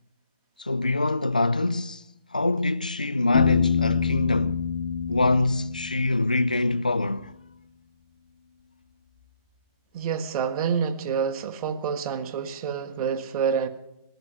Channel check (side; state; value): both; inverted; correlation -0.70